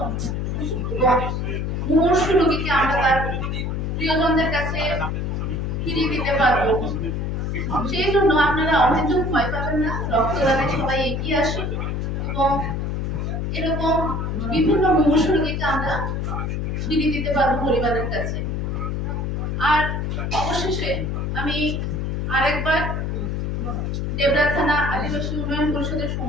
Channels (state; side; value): noise; left; hum, 1 dB below the sound